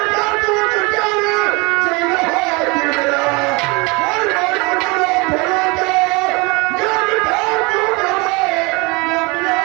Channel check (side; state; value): left; quieter; 27.1 dB